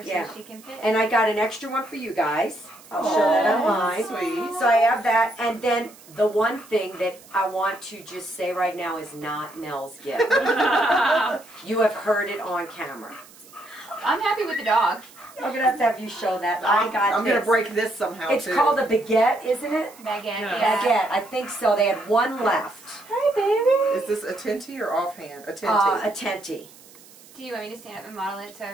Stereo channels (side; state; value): right; noise; hiss, 23 dB below the sound